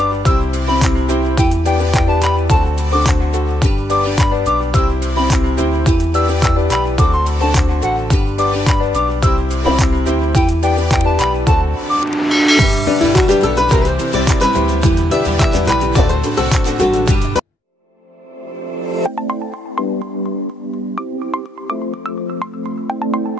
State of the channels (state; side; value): normal; both; correlation 0.82